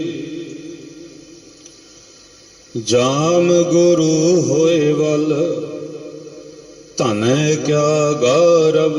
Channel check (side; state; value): both; identical; correlation 1.00